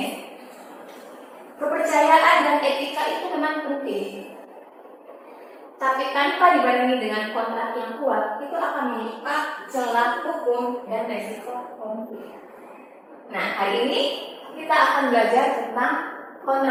kepercayaan dan etika itu memang penting. Tapi tanpa dibarengi dengan kontrak yang kuat, itu akan membuka celah hukum dan resiko konflik. Nah, hari ini kita akan belajar tentang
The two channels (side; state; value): both; identical; correlation 1.00